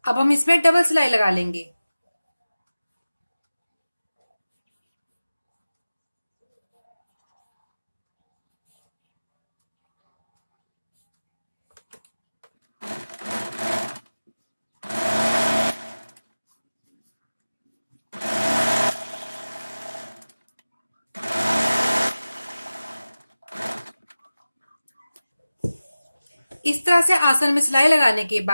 अब हम इसमें डबल सिलाई लगा लेंगे। इस तरह से आसन में सिलाई लगाने के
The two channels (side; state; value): both; inverted; correlation -0.97